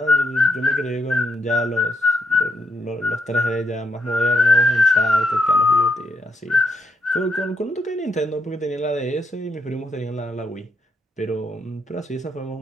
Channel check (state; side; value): normal; both; correlation 0.78